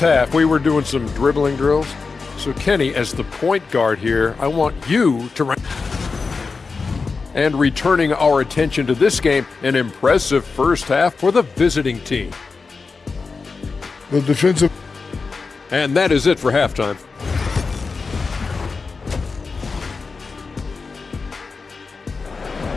we were doing some dribbling drills. So Kenny, as the point guard here, I want you to and returning our attention to this game, an impressive first half for the visiting team. The defensive. And that is it for halftime.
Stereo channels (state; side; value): quieter; right; 4.5 dB